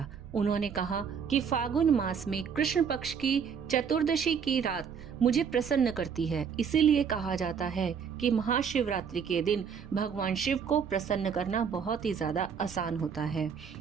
उन्होंने कहा कि फागुन मास में कृष्ण पक्ष की चतुर्दशी की रात मुझे प्रसन्न करती है, इसीलिए कहा जाता है कि महाशिवरात्रि के दिन भगवान शिव को प्रसन्न करना बहुत ही ज्यादा आसान होता है।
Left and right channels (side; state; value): left; quieter; 6.9 dB